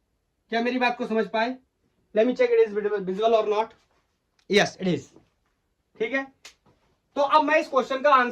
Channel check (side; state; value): both; identical; correlation 1.00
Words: क्या मेरी बात को समझ पाए? Let me check it is visual और नॉट। Yes it is. ठीक है, तो अब मैं इस क्वेश्चन का